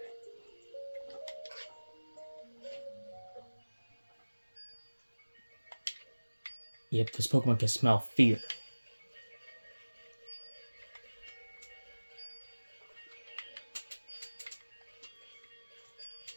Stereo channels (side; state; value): both; inverted; correlation -1.00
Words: Yep, this Pokemon can smell fear.